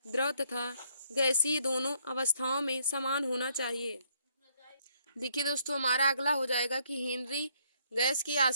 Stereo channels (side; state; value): both; inverted; correlation -0.68